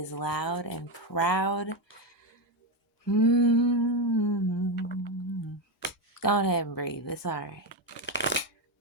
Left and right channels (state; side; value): normal; both; correlation 0.09